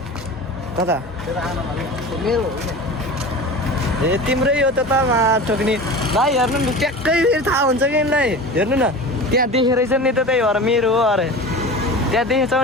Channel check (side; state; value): both; normal; correlation 0.33